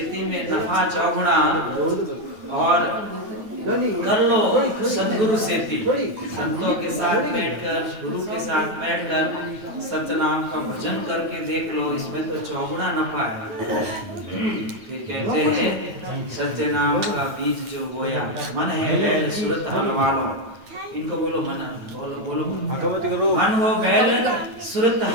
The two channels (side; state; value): left; late; 9.2 ms